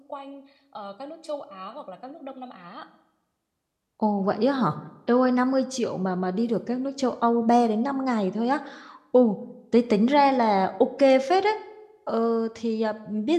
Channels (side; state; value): both; identical; correlation 1.00